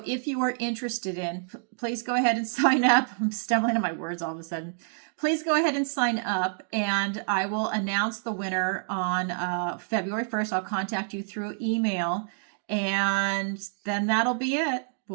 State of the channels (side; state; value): left; silent; digital silence